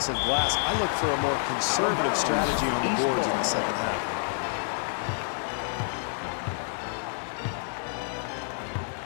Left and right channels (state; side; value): silent; right; digital silence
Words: glass. I look for a more conservative strategy on the boards in the second half.